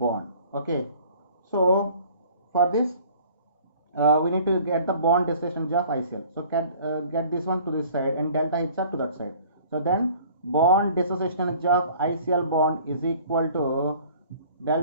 Okay, so for this we need to get the bond dissociation energy of ICl. So get this one to this side and delta HR to that side. So then bond dissociation energy of ICl bond is equal to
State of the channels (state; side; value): inverted; both; correlation -0.51